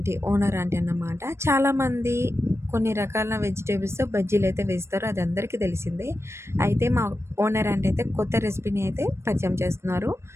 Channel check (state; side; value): late; left; 0.13 ms